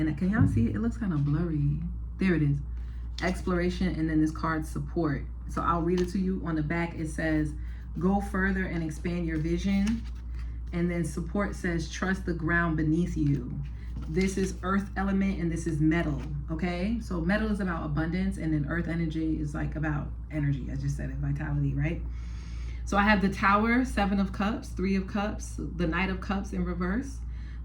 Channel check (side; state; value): both; identical; correlation 1.00